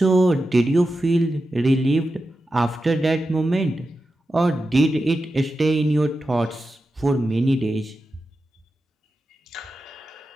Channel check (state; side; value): normal; both; correlation 0.91